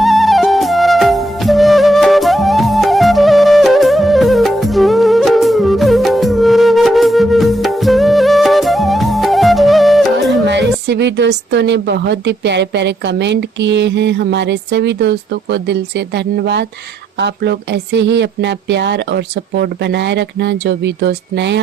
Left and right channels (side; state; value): both; normal; correlation 0.77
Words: सभी दोस्तों ने बहुत ही प्यारे प्यारे कमेंट किए हैं। हमारे सभी दोस्तों को दिल से धन्यवाद। आप लोग ऐसे ही अपना प्यार और सपोर्ट बनाए रखना। जो भी दोस्त नए